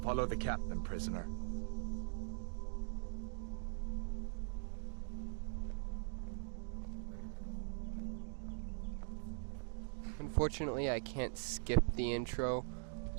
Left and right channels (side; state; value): left; silent; digital silence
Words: Follow the captain, prisoner. Unfortunately, I can't skip the intro,